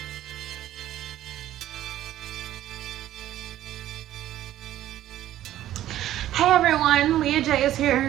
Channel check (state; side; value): quieter; left; 13.0 dB